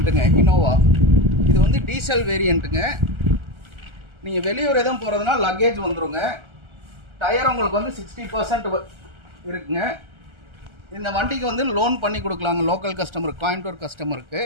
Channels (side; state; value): left; late; 1.3 ms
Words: இனோவா. இது வந்து டீசல் வேரியண்ட்டுங்க. நீங்கள் வெளியூர் எதுவும் போகிறதுனா லக்கேஜ் வந்துடுங்க. டயர் உங்களுக்கு வந்து 60% இருக்குங்க. இந்த வண்டிக்கு வந்து லோன் பண்ணி கொடுக்கலாங்க லோக்கல் கஸ்டமருக்கு, கோயம்புத்தூர் கஸ்டமருக்கு.